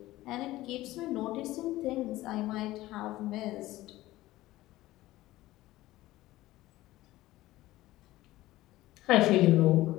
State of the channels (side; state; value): right; quieter; 16.8 dB